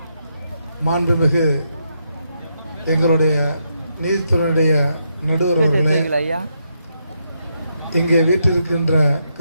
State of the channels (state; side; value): inverted; both; correlation -0.80